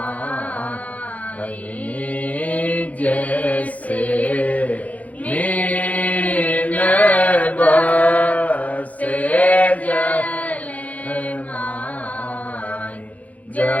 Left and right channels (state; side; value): late; right; 0.071 ms